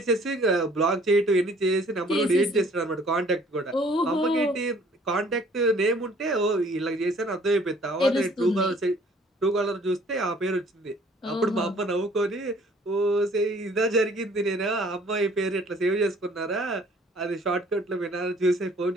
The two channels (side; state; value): both; normal; correlation 0.57